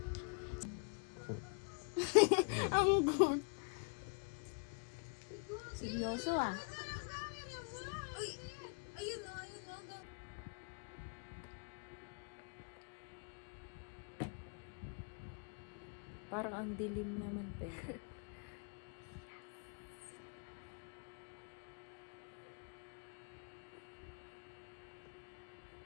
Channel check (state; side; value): quieter; right; 37.3 dB